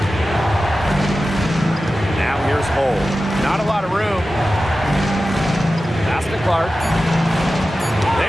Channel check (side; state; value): both; normal; correlation 0.94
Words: Now here's Hull. Not a lot of room. Pass to Clark.